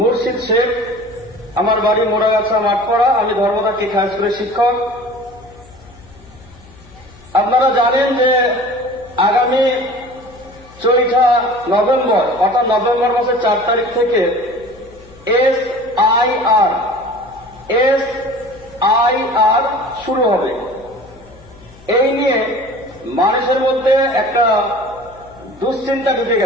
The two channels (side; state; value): left; noise; hum, 24 dB below the sound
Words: শেখ, আমার বাড়ি মোড়াগাছা মাঠপাড়া, আমি ধর্মদা কেক হাই স্কুলের শিক্ষক। আপনারা জানেন যে আগামী 4 নভেম্বর অর্থাৎ নভেম্বর মাসের 4 তারিখ থেকে SIR শুরু হবে। এই নিয়ে মানুষের মধ্যে একটা দুশ্চিন্তা ঢুকে